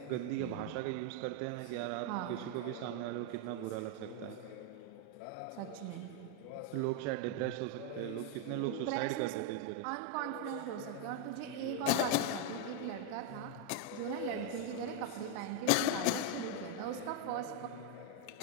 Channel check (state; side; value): different; both; correlation 0.01